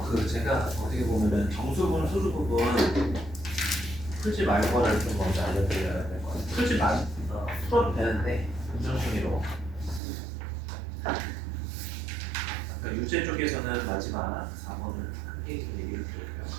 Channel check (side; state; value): left; drops out; at 10.0 s